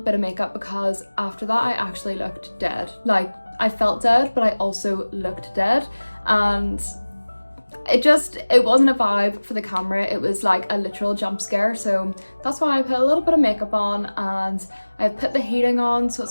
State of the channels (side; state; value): both; inverted; correlation -1.00